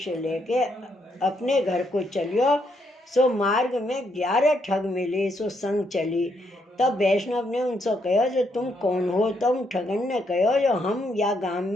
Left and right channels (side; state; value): both; normal; correlation 0.76